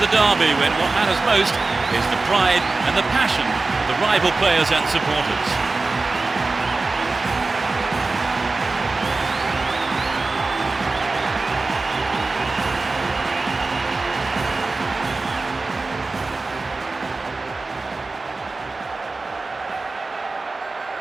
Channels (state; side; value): quieter; left; 3.6 dB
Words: derby when what matters most is the pride and the passion of the rival players and supporters.